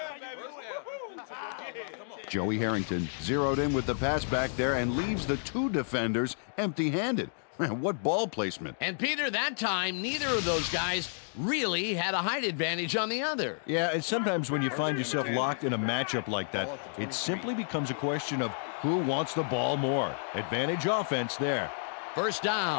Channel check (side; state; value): right; silent; digital silence